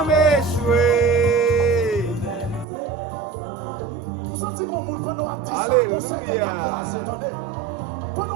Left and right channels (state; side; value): drops out; left; at 2.7 s